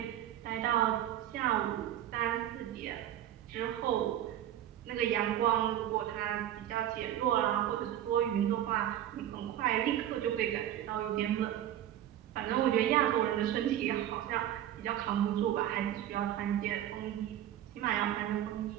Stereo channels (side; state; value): left; quieter; 11.8 dB